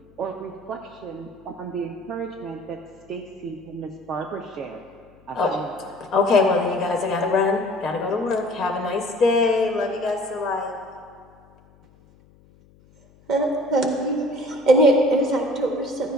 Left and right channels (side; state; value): left; noise; hum, 28 dB below the sound